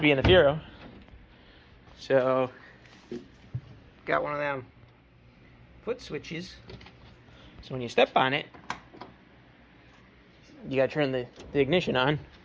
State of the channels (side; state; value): both; identical; correlation 1.00